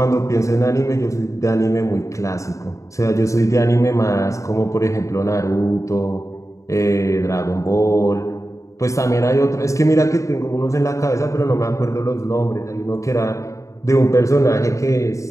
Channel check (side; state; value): right; late; 0.15 ms